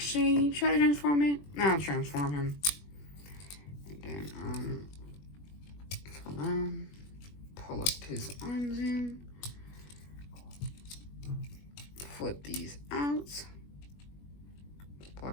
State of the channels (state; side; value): late; right; 21 ms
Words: try to transform it. I'll transform him. And then, pull up his arms in, flip these out, plug